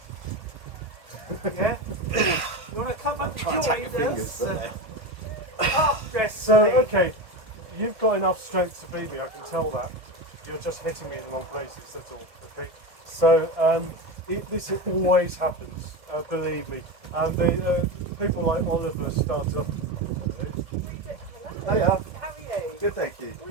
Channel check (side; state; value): left; late; 1.7 ms